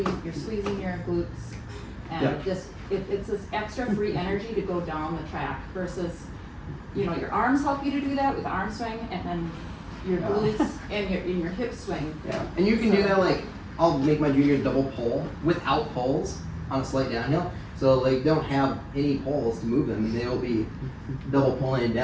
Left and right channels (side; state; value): both; identical; correlation 1.00